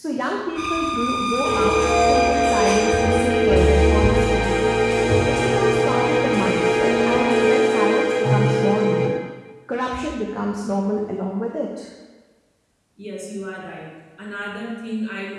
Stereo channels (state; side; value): identical; both; correlation 1.00